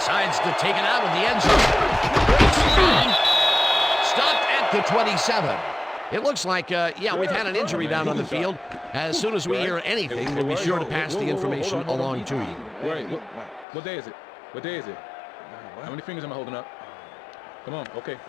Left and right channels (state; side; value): drops out; right; at 13.7 s